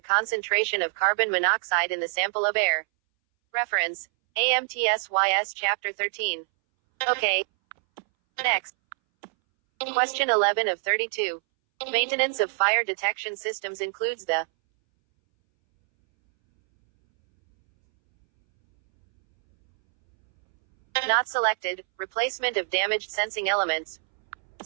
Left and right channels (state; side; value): silent; left; 61 dB below the other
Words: concentration of carbon monoxide in the sample of air. Reference: AMTSYS Chapter 13. Okay. Next. Question 11 of 32. Maintenance of fire detection systems includes the not selected, replacement of damaged sensing elements.